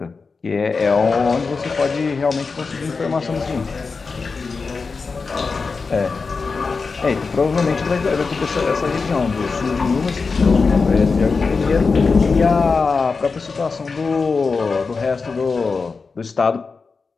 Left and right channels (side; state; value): right; quieter; 4.6 dB